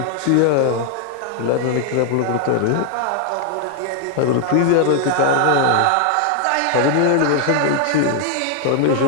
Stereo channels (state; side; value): different; both; correlation 0.00